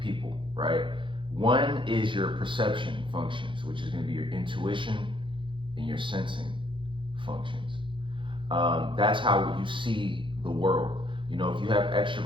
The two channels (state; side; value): late; left; 0.24 ms